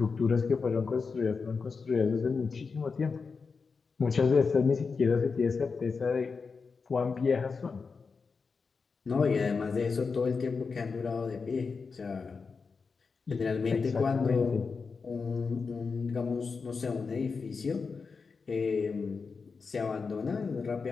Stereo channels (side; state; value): right; quieter; 4.9 dB